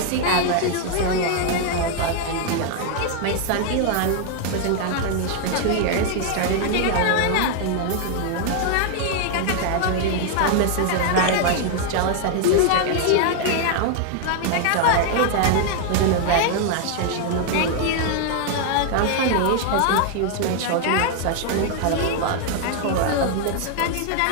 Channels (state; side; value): different; both; correlation 0.00